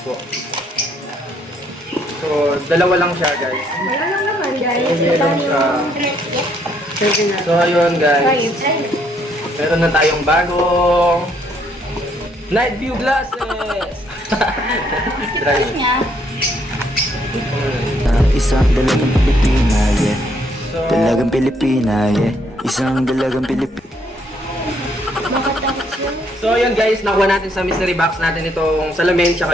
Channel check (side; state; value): both; normal; correlation 0.70